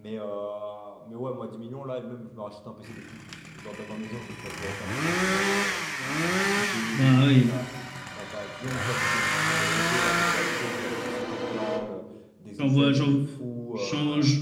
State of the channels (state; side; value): identical; both; correlation 1.00